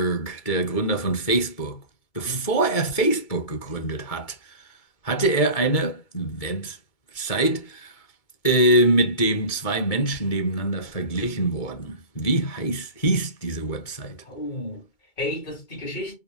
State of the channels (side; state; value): right; late; 2.2 ms